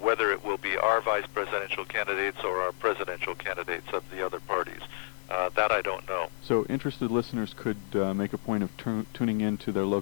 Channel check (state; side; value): silent; right; digital silence